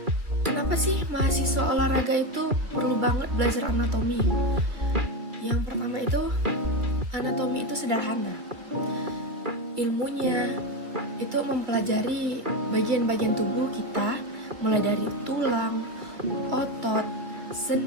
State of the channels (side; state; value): left; late; 2.6 ms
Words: kenapa sih mahasiswa olahraga itu perlu banget belajar anatomi? Yang pertama itu, anatomi itu sederhana. Ilmunya itu mempelajari bagian-bagian tubuh kita, mulai dari tulang, otot,